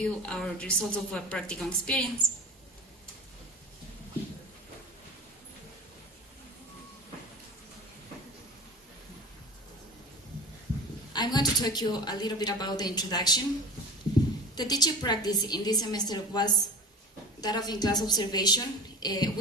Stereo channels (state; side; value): normal; both; correlation 0.32